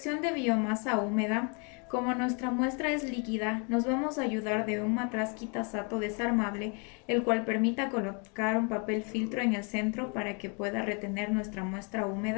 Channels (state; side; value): quieter; right; 35.5 dB